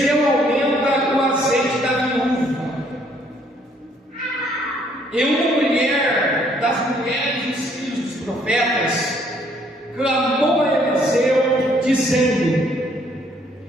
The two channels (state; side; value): normal; both; correlation 0.65